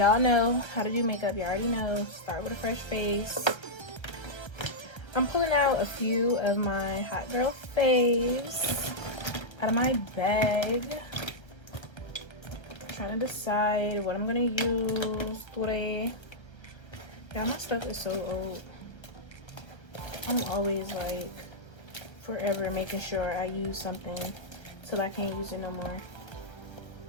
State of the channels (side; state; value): right; late; 1.3 ms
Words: know how to do makeup. You already know. Start with a fresh face. I'm pulling out a few of my hot girl faves out of my bag. Trying to decide what I'm gonna use today. Yeah, my stuff is so old. I'm always like forever making sure I use something till I can't use it no more.